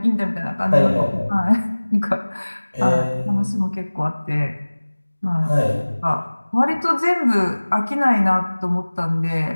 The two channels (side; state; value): both; inverted; correlation -1.00